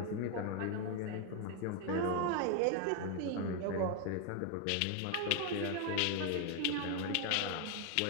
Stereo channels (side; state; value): both; different; correlation 0.00